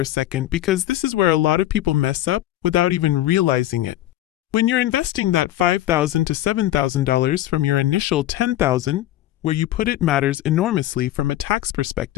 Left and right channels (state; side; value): quieter; right; 14.2 dB